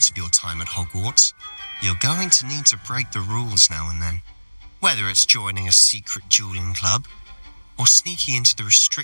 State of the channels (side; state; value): both; inverted; correlation -1.00